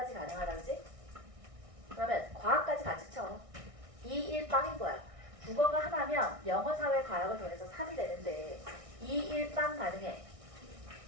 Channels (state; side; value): late; left; 1.6 ms